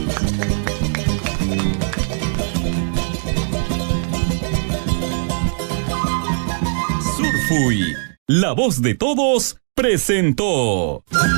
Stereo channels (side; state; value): left; silent; 64 dB below the other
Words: Surfuy, la voz de todos, presentó.